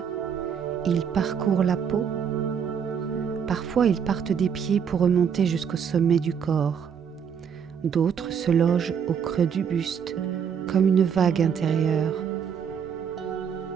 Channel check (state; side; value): quieter; left; 7.4 dB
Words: Il parcourt la peau. Parfois, ils partent des pieds pour remonter jusqu'au sommet du corps. D'autres se logent au creux du buste, comme une vague intérieure.